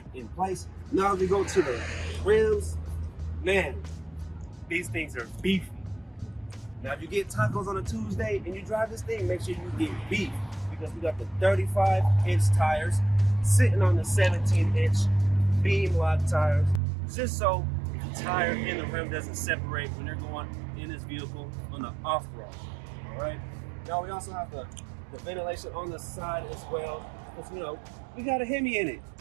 in place. Now we go to the rims. Man, these things are beefy. Now if you get tacos on a Tuesday and you drive this thing, make sure you get beef, because we got the 35-inch tires sitting on the 17-inch beam lock tires, just so the tire and the rim doesn't separate when you're going in this vehicle on the off-road. All right. Now we also have the ventilation on the side as well, because you know we got a Hemi in it.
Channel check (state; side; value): drops out; left; at 16.8 s